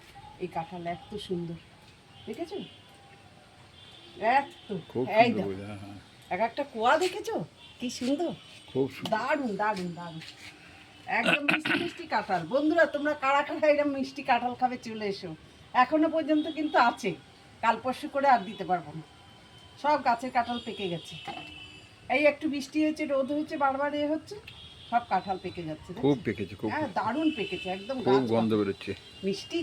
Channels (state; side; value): identical; both; correlation 1.00